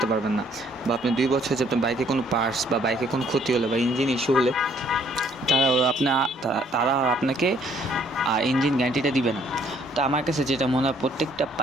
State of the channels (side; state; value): both; normal; correlation 0.64